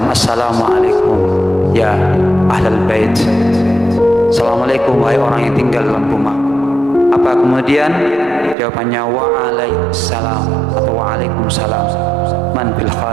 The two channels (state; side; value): drops out; left; at 8.6 s